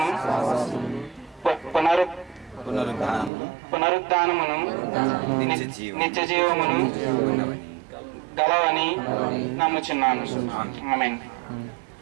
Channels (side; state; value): left; drops out; at 3.3 s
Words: పునరుద్ధానమును నిత్య జీవమును గలవని నమ్ముచున్నాను. ఆమేన్.